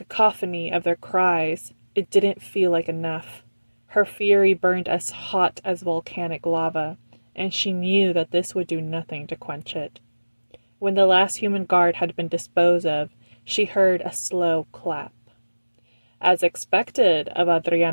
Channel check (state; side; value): inverted; both; correlation -1.00